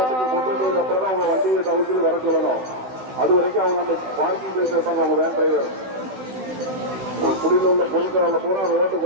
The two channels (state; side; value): late; left; 16 ms